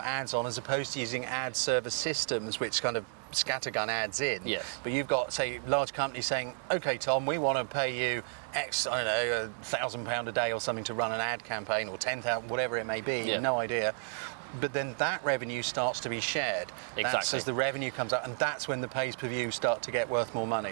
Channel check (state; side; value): silent; left; digital silence